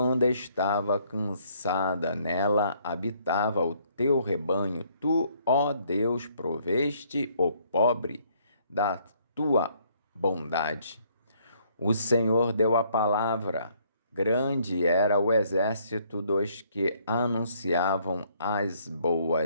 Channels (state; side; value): inverted; both; correlation -0.66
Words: estava cansada. Nela habitava o teu rebanho. Tu, ó Deus, proveste o pobre da tua bondade. O Senhor deu a palavra. Grande era o exército dos que anunciavam as